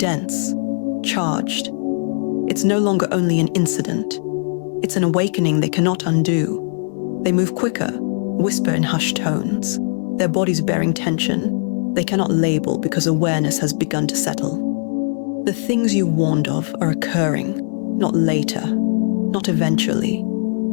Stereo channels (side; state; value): right; silent; 60 dB below the other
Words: charged. It's no longer only an incident. It's an awakening they cannot undo. They move quicker, whisper in hushed tones, their bodies bearing tension they cannot label because awareness has begun to settle. The things you warned of are occurring, not later, not eventually.